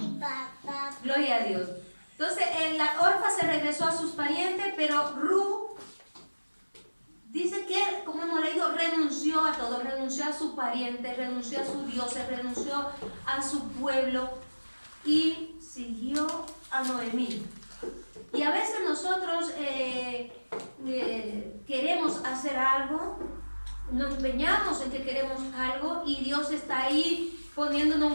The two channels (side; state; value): both; inverted; correlation -1.00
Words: Gloria a Dios. Entonces, la Orfa se regresó a sus parientes, pero Ru dice que, como hemos leído, renunció a todo, renunció a su pariente, renunció a sus dioses, renunció a su pueblo y siguió a Noemí. Y a veces nosotros queremos hacer algo, nos empeñamos en que queremos algo y Dios está ahí poniéndonos